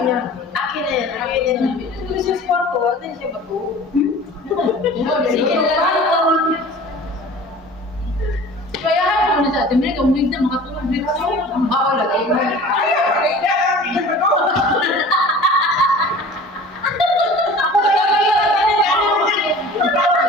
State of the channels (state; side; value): normal; both; correlation 0.42